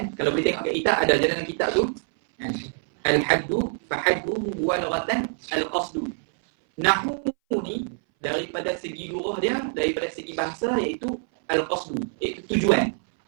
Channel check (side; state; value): left; silent; 60 dB below the other